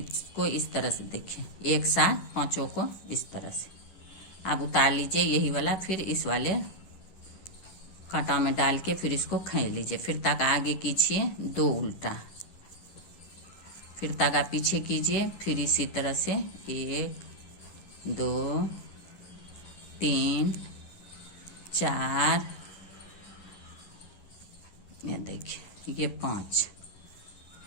इस तरह से देखिए, एक साथ पांचों को इस तरह से आप उतार लीजिए यही वाला। फिर इस वाले कांटा में डाल के फिर इसको खींच लीजिए। फिर तागा आगे कीजिए, दो उल्टा, फिर तागा पीछे कीजिए। फिर इसी तरह से 1 2 3 4, ये देखिए ये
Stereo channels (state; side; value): late; right; 11 ms